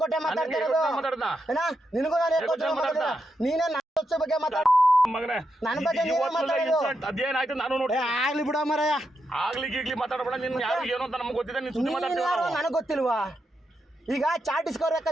ಕೊಟ್ಟೆ ಮಾತಾಡ್ತಿರೋದು. ನಿನಗೂ ನಾನು ಕೊಟ್ಟೆ ನೀನೇ ನನ್ನ ಬಗ್ಗೆ ಮಾತಾಡ ಮಗನೇ ನನ್ನ ಬಗ್ಗೆ ಅದೇನಾಯ್ತು ನಾನು ನೋಡಿ ಆಗ್ಲಿ ಬಿಡ ಮರಯ್ಯ. ಆಗ್ಲಿ ಮಾತಾಡಬೇಡ. ನೀನ್ ಯಾರು ಏನು ಅಂತ ನಮ್ಗೆ ಗೊತ್ತಿದೆ. ನೀನ್ ಸುದ್ದಿ ಮಾತಾಡ್ತೀವಿ ನನಗೆ ಗೊತ್ತಿಲ್ವಾ? ಈಗ ಚಾಟ್ ಇಸ್ಕೋಬೇಕ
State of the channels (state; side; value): normal; both; correlation 0.84